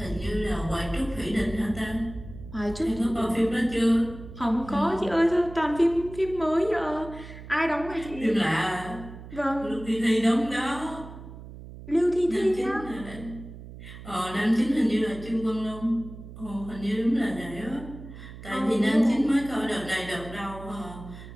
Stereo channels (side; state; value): right; noise; hum, 14 dB below the sound